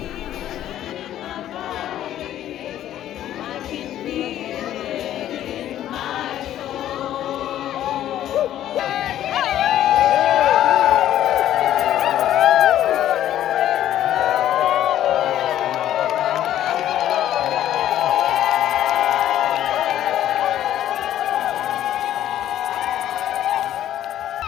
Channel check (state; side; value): quieter; right; 12.0 dB